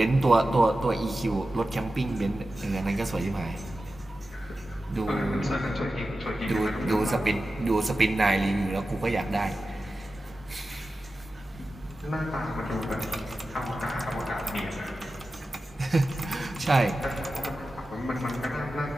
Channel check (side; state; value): both; normal; correlation 0.93